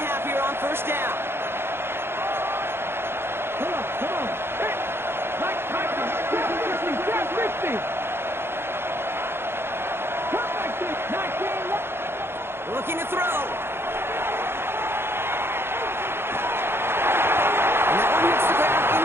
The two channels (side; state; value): left; late; 0.11 ms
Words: here on 1st down. Come on. Hey, Mike Tyson, 50. Come like this, 19. Looking to throw. And that one hits the ground